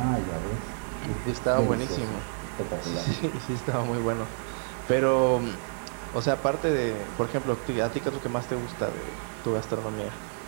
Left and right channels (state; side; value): silent; left; 59 dB below the other